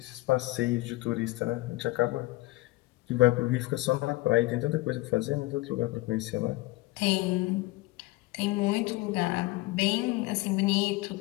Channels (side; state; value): right; quieter; 20.5 dB